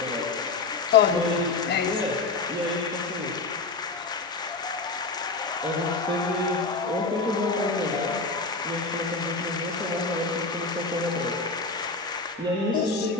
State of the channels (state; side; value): quieter; right; 4.0 dB